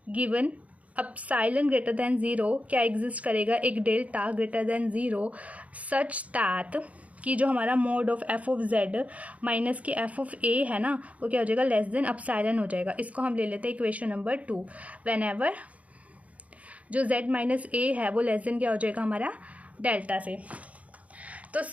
given epsilon greater than 0 क्या एग्जिस्ट करेगा, एक delta greater than 0 such that कि जो हमारा mod of f of Z minus की एफ ऑफ ए है ना वो क्या हो जाएगा लेस देन एप्सिलॉन हो जाएगा। इसको हम ले लेते हैं इक्वेशन नंबर 2। वेन एवर जो z माइनस ए है वो लेस देन क्या हो जाएगा हमारा डेल्टा से। तो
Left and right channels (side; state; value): left; late; 0.067 ms